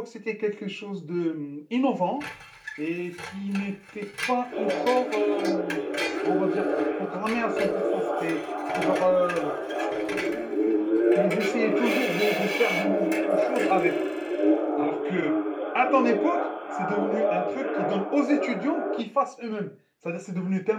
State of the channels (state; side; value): identical; both; correlation 1.00